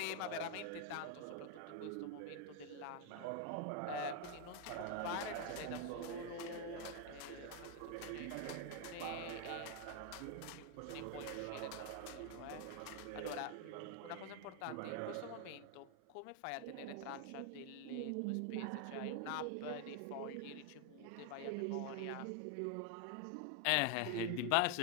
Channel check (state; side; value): different; both; correlation 0.01